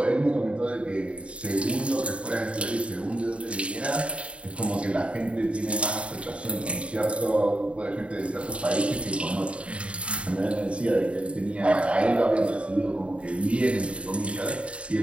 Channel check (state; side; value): late; left; 0.060 ms